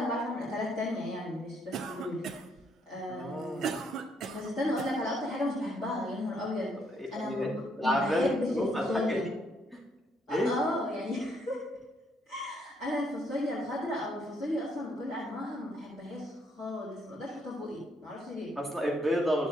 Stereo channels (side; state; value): both; normal; correlation 0.72